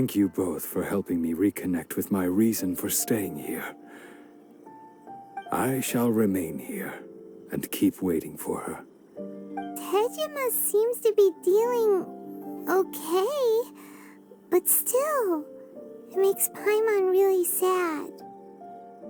you both for helping me reconnect with my reason for staying here. I shall remain here and keep waiting for her. Tejima seems to be dealing okay, but still, it makes Paimon really sad.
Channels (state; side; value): identical; both; correlation 1.00